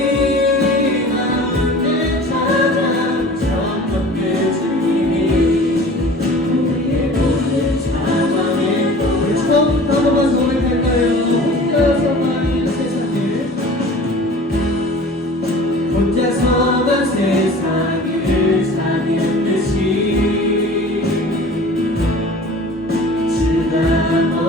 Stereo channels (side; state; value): both; normal; correlation 0.43